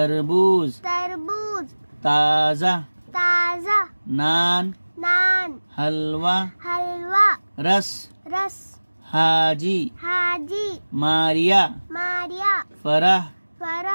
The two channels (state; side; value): inverted; both; correlation -1.00